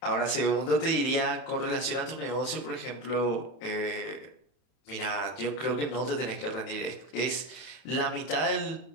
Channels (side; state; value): right; late; 31 ms